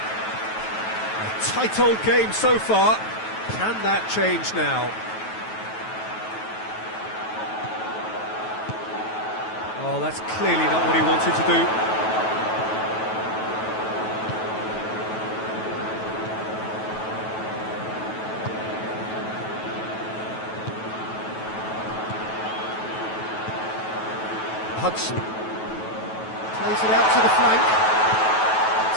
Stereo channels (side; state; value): right; late; 9.2 ms